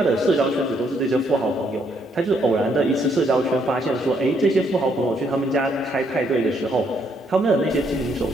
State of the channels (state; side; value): normal; both; correlation 0.72